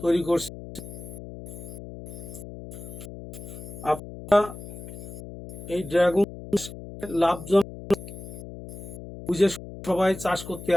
তৈরি করছে। আপনারা এই ড্রাগন লাভজনক বুঝে সবাই চাষ করতে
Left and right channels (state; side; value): noise; left; hum, 12 dB below the sound